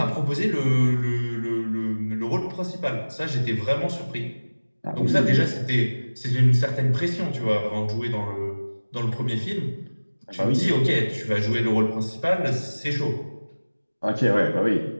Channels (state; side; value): inverted; both; correlation -1.00